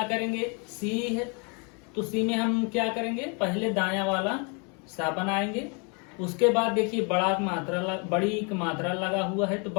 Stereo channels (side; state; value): right; quieter; 34.6 dB